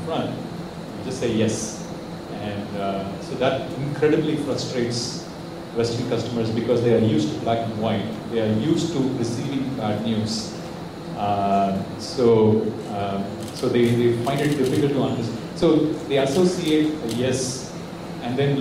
you just say yes. And so that incredibly frustrates Western customers because they are used to black and white. They are used to receiving bad news. So they find it difficult to understand. So they associate a yes and then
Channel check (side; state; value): both; identical; correlation 1.00